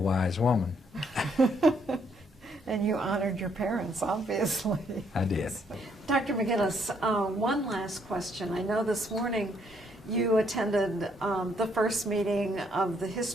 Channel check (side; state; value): both; normal; correlation 0.70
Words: woman. And you honored your parents, obviously. I did. Dr. McGinnis, one last question. I know this morning you attended the first meeting of the